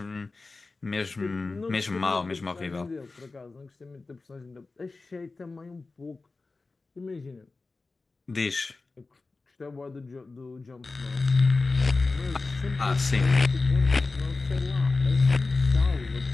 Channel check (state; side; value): quieter; right; 3.7 dB